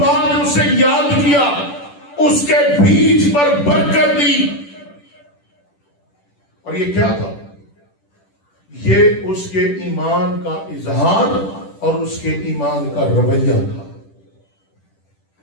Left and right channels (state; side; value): late; right; 10 ms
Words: ने उसे याद किया, उसके बीज पर बरकत दी। और ये क्या था? ये उसके ईमान का इजहार और उसके ईमान का रवैया था।